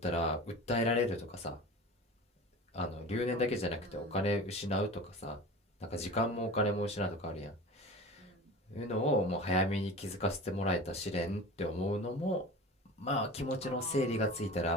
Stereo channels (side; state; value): both; normal; correlation 0.35